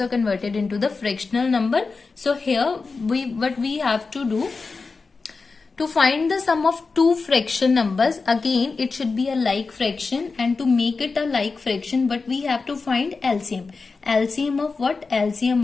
converted into the fractional number. So here what we have to do, to find the sum of two fraction numbers, again it should be a like fraction, and to make it a like fraction, but we have to find LCM. LCM of what? LCM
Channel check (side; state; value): right; quieter; 4.3 dB